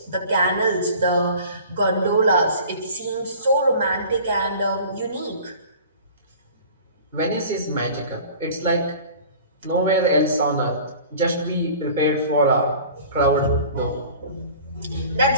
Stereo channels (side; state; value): both; inverted; correlation -0.43